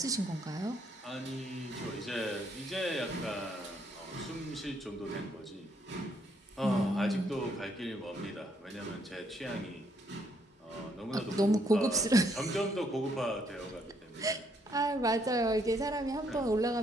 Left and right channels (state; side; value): normal; both; correlation 0.71